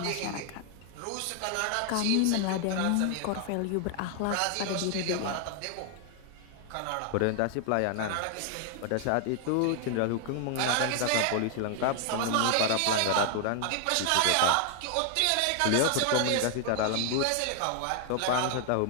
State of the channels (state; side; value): different; both; correlation 0.00